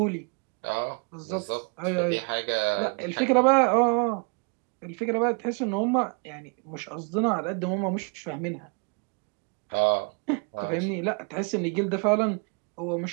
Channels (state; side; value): quieter; left; 34.3 dB